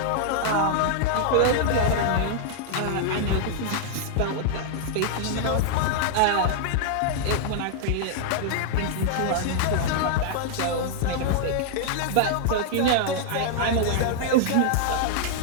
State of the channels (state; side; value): different; both; correlation -0.01